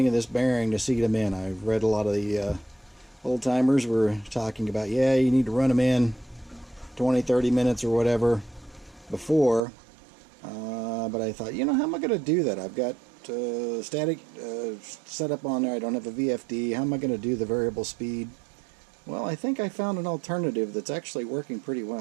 of this bearing to seat them in. I've read a lot of the old timers were talking about, yeah, you need to run them in 20-30 minutes or whatever before, but I thought, how am I going to do that? I've got static set up on there. I don't have a VFD. How am I going to do the variable speed? Well, I think I found an alternative that's actually working pretty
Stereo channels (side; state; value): left; drops out; at 9.6 s